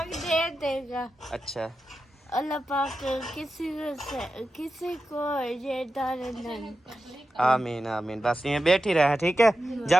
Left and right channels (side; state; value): both; normal; correlation 0.91